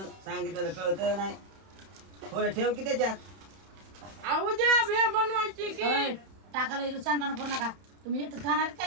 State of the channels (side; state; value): left; late; 31 ms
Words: सांगितलेलं कळत नाही थोडं ठेव की त्याच्यात उद्या भेळ बनवायची की टाकायला इथं सांगताना करू नका तुम्ही येत खाणार